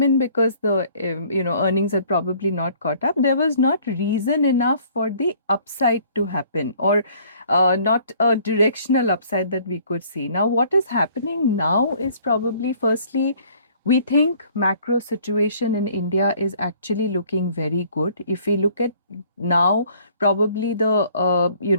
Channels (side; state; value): both; inverted; correlation -0.57